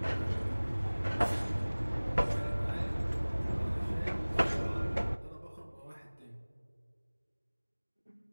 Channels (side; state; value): both; inverted; correlation -1.00